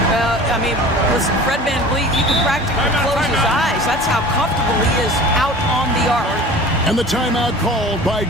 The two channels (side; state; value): both; normal; correlation 0.40